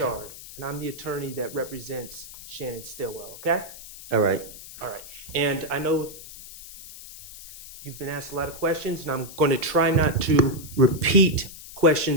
and I'm the attorney that represents Shannon Stillwell, okay? All right. All right. And I know you've been asked a lot of questions, and I'm going to try not to repeat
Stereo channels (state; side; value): noise; left; hiss, 15 dB below the sound